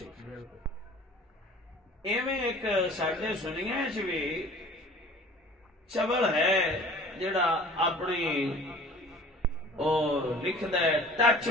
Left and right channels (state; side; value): normal; both; correlation 0.46